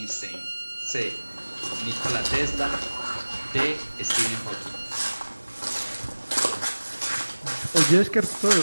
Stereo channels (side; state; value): both; inverted; correlation -1.00